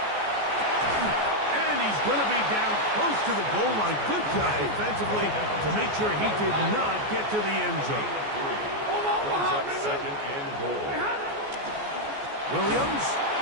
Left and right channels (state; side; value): late; left; 14 ms